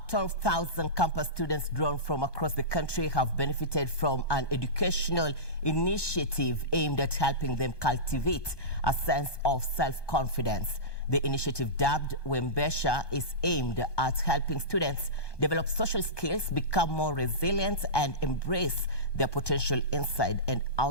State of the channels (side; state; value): right; late; 1.2 ms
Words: 12,000 campus students drawn from across the country have benefited from an educational initiative aimed at helping them cultivate a sense of self-confidence. The initiative, dubbed Wembesha, is aimed at helping students develop social skills, become more resilient, and embrace their potential inside and